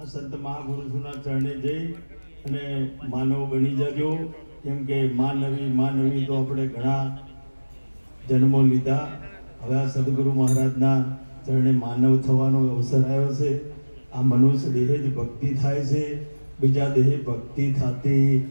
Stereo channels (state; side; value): inverted; both; correlation -1.00